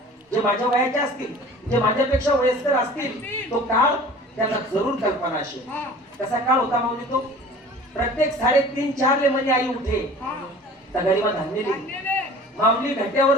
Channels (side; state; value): both; normal; correlation 0.44